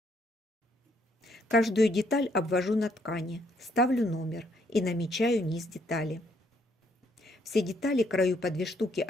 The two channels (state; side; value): normal; both; correlation 0.70